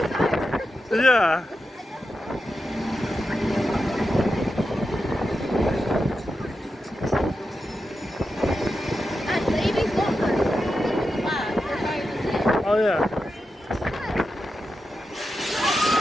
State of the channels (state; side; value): normal; both; correlation 0.89